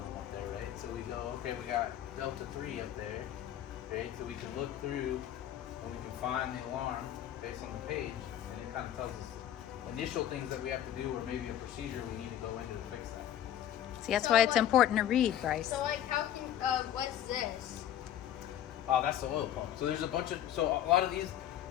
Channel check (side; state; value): right; quieter; 11.2 dB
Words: up there, right? So we go, okay, we got Delta 3 up there, right? So we can look through and we can find the alarm based on the page, and it kind of tells us initial things that we have to do, or maybe a procedure we need to go into to fix that. See, that's So why it's what- important to read, Bryce. So like, how can what's this? Oh, that's the oil pump. So there's a bunch of, so a lot of these,